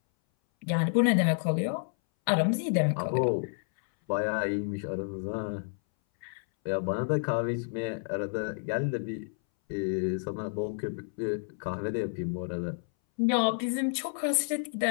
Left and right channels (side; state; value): right; silent; 58 dB below the other